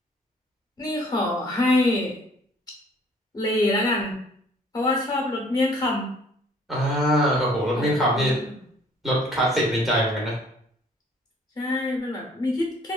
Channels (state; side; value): normal; both; correlation 0.57